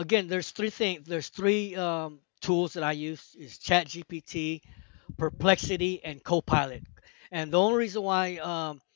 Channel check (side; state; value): right; quieter; 37.5 dB